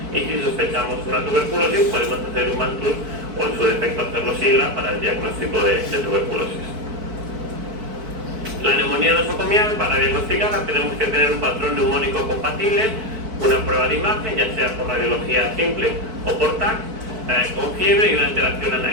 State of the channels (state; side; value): late; left; 4.5 ms